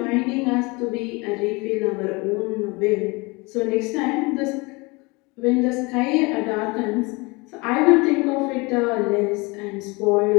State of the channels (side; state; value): right; quieter; 26.3 dB